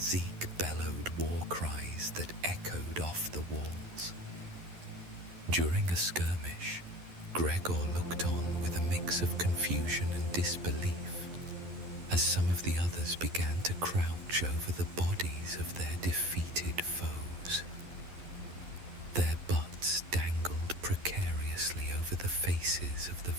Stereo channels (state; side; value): late; left; 11 ms